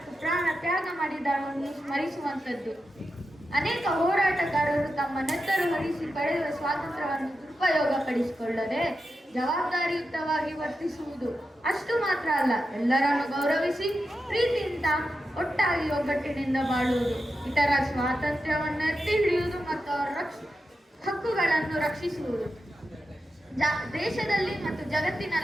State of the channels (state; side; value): normal; both; correlation 0.89